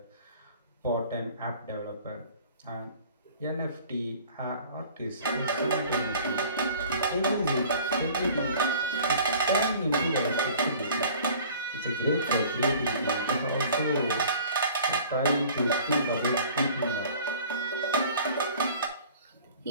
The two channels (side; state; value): both; inverted; correlation -0.48